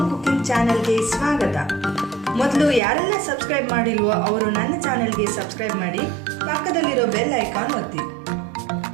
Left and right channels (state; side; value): drops out; left; at 2.8 s